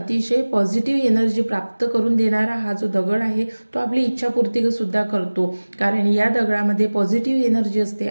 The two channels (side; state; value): both; inverted; correlation -1.00